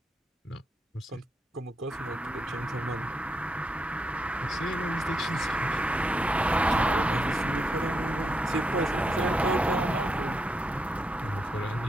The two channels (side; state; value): both; normal; correlation 0.81